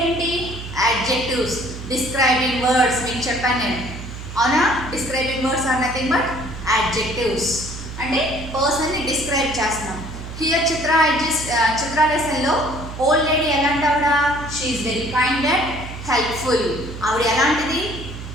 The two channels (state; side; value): noise; right; hum, 10 dB below the sound